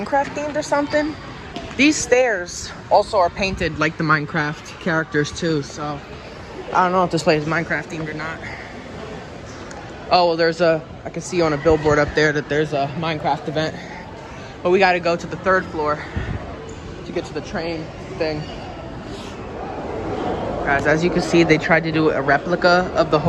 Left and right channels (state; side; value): identical; both; correlation 1.00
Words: themed or something? These stairs also are painted like the Minecraft characters too, so I don't know if this place is Minecraft themed or not. Oh, well, I can see on a billboard up there that there's a Minecraft event. But we gotta go to the 3rd floor to get to the train thing. Guys, as you can see, they tried to do a replica of the